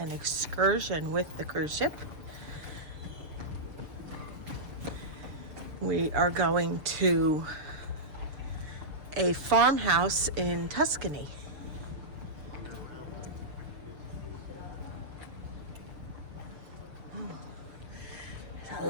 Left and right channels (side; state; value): left; late; 6.8 ms